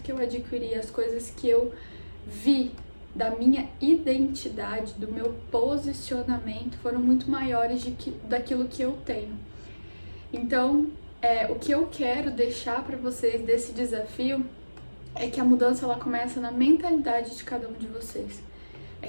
que eu adquiri, as coisas que eu vi da minha identidade, do meu posicionamento, foram muito maiores daquilo que eu tenho. Então, o que eu quero deixar para vocês desse desafio é que a mudança ela começa na mentalidade de cada um de vocês. É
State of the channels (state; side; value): inverted; both; correlation -1.00